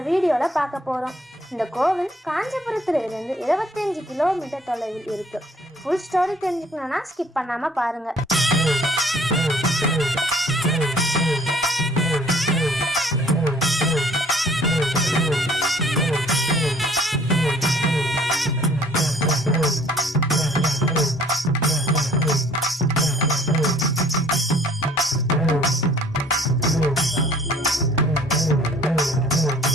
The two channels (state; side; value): normal; both; correlation 0.56